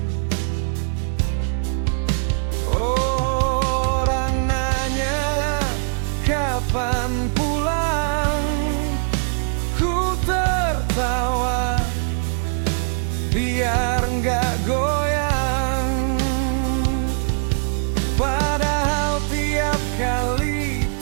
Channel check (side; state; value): left; silent; 64 dB below the other